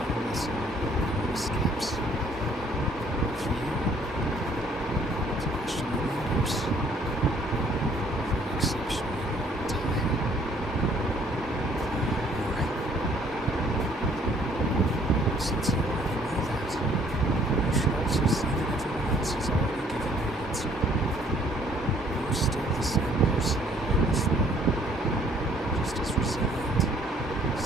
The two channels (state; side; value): normal; both; correlation 0.61